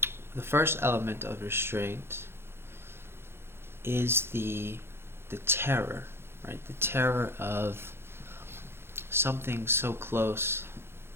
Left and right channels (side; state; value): left; late; 0.12 ms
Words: The first element of restraint is the terror, right? The terror of something so close